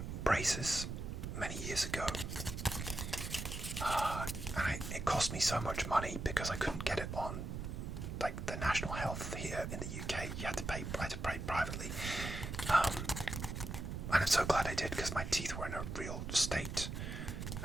braces many years ago, and it cost me so much money because I couldn't get it on like the National Health here in the UK. I had to pay privately, and I'm so glad I did because my teeth were in a real state,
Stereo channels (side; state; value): right; noise; rumble, 5 dB below the sound